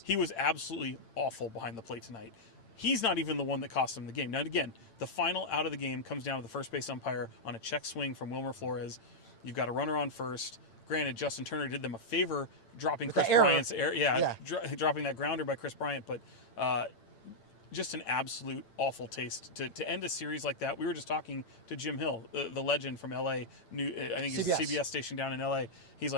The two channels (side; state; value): right; late; 8.9 ms